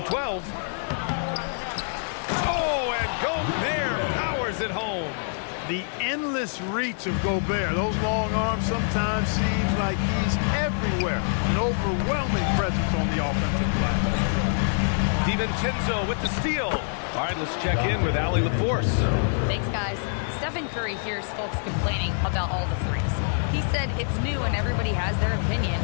12. Oh, and Gobert powers it home. The endless reach of Gobert. Those long arms sometimes seems like he's everywhere. An overwhelming presence on the offensive glass. DiVincenzo with the steal. All right, let's check in with Allie LaForce. Thanks, guys. Stephen Curry hears folks complaining about all the threes. He said it's new and everybody has their opinion.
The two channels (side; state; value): right; silent; digital silence